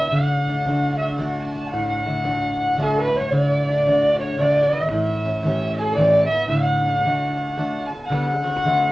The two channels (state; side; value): normal; both; correlation 0.96